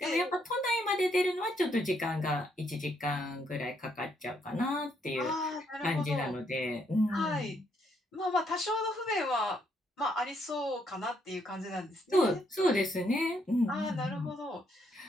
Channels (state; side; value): normal; both; correlation 0.73